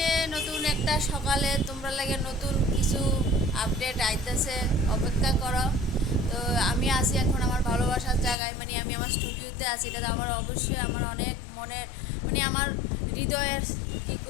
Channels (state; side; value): drops out; right; at 8.3 s